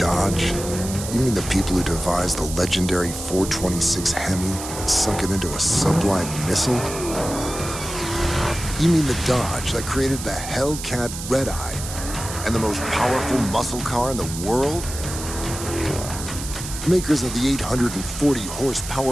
You mean the people who devised the legendary 426 Hemi and sunk it into a sublime missile? You mean the Dodge that created the Hellcat Red Eye and the most powerful muscle car in the world? Makers of the 840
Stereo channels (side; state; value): right; noise; hiss, 9 dB below the sound